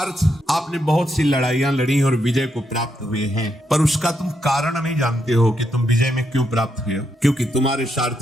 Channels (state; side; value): normal; both; correlation 0.80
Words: आपने बहुत सी लड़ाइयां लड़ी और विजय को प्राप्त हुए हैं, पर उसका तुम कारण नहीं जानते हो कि तुम विजय में क्यों प्राप्त हुए हो। क्योंकि तुम्हारे